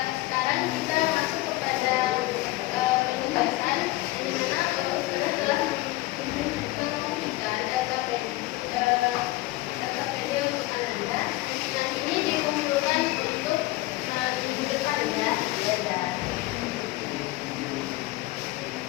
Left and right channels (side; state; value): right; quieter; 18.8 dB